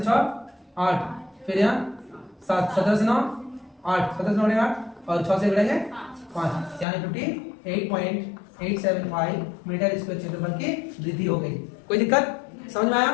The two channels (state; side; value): drops out; right; at 6.9 s